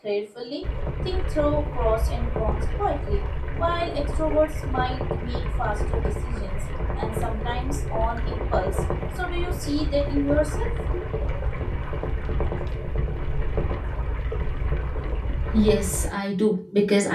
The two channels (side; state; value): both; identical; correlation 1.00